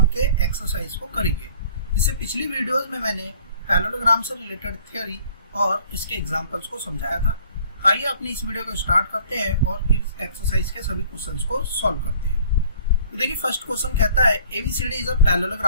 के एक्सरसाइज को करेंगे। इससे पिछली वीडियोस में मैंने पैरेललोग्राम से रिलेटेड थ्योरी और इसके एग्जांपल्स को समझाया था। आइए अपनी इस वीडियो को स्टार्ट करते हैं और इस एक्सरसाइज के सभी क्वेश्चंस को सॉल्व करते हैं। तो देखिए, फर्स्ट क्वेश्चन कहता है ABCD is a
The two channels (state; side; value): inverted; both; correlation -0.54